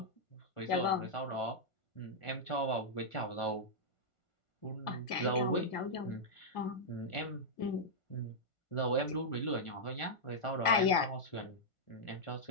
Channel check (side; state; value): right; late; 1.5 ms